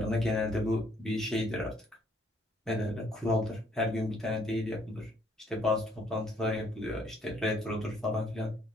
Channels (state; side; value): normal; both; correlation 0.66